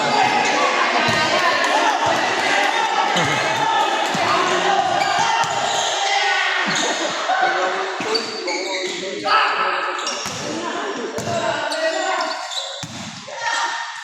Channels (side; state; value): both; identical; correlation 1.00